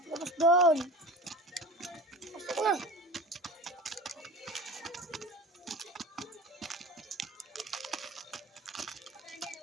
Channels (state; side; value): normal; both; correlation 0.36